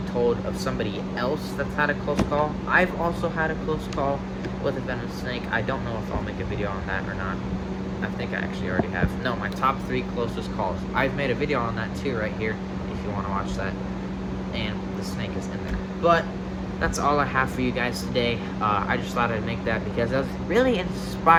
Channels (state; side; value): identical; both; correlation 1.00